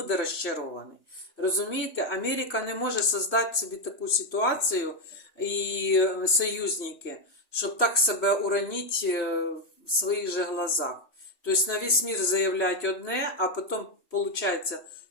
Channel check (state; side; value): late; right; 3.0 ms